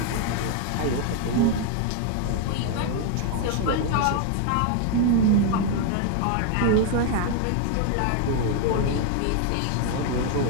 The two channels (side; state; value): both; different; correlation 0.01